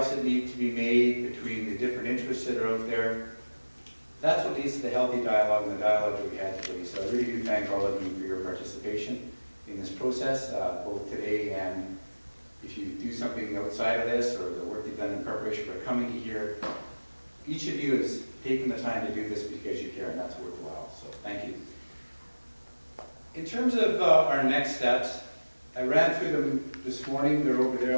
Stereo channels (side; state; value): both; inverted; correlation -1.00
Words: that need to be made, between the different interests that are out there, that's what leads to the healthy dialogue and the dialogue that we had today. So I really do thank all of you for your participation in this process, both today and if you do something outside of this or the work you've done in preparation for coming here. Each of you has taken the time to do this because you care, and that's worthwhile. So thank you. In terms of our next steps, I ran through them this morning. They're over there